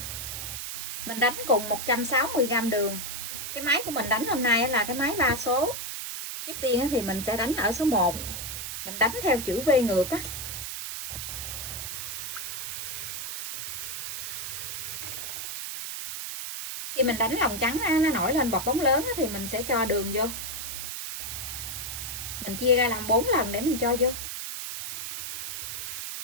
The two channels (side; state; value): right; noise; hiss, 5 dB below the sound